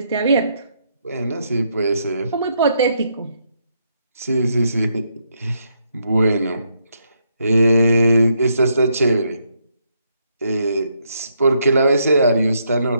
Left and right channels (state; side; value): inverted; both; correlation -0.76